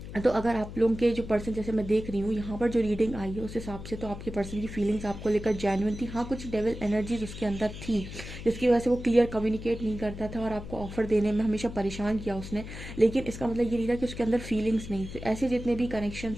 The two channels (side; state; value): left; noise; hum, 11 dB below the sound